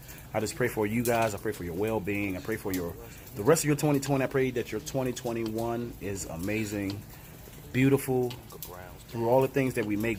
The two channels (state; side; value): identical; both; correlation 1.00